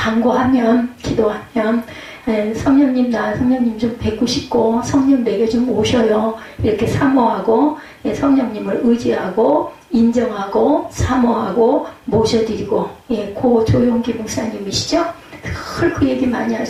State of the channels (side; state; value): both; identical; correlation 1.00